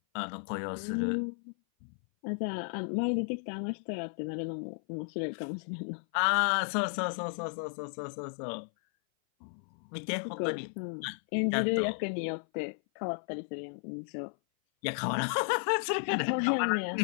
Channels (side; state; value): right; silent; 55 dB below the other